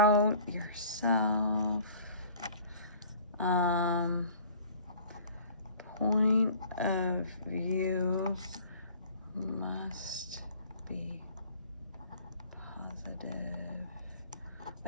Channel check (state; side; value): inverted; both; correlation -0.49